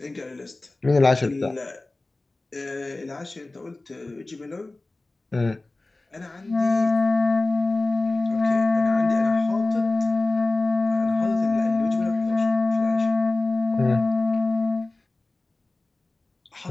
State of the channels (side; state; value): right; quieter; 3.0 dB